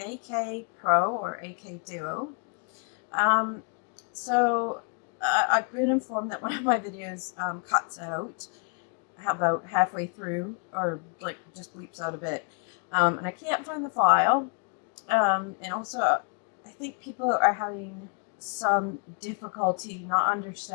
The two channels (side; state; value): right; quieter; 37.1 dB